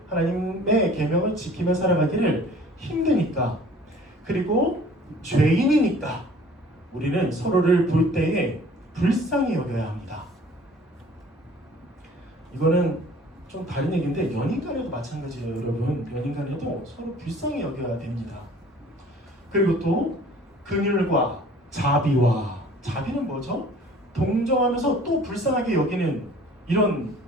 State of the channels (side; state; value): both; normal; correlation 0.50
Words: 하나님의 계명을 지키며 살아가기를 힘드니까, 그리고 죄인이니까 우리는 서로를 볼 때에 불쌍히 여겨야 합니다. 이거는 좀 다른 얘기인데 연인 간에도 마찬가지예요. 여러분, 연인 간에도 서로 불쌍히 여겨야 됩니다. 그리고 또 긍휼과 자비와, 자비는 뭐죠? 동정하면서 또 불쌍하게 여기는 이런